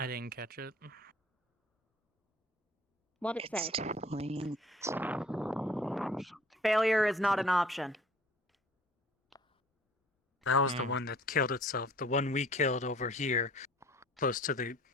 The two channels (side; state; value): both; normal; correlation 0.51